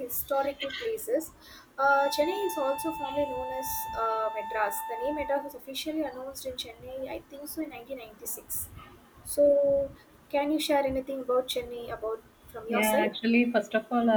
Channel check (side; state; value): both; identical; correlation 1.00